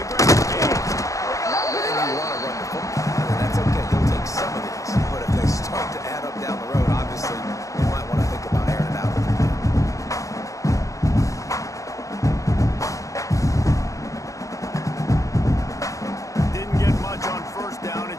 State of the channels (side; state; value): right; late; 0.16 ms